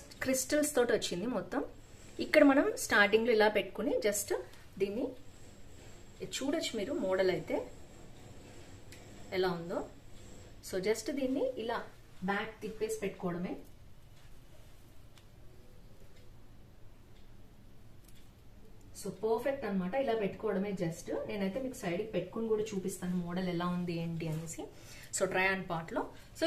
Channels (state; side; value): identical; both; correlation 1.00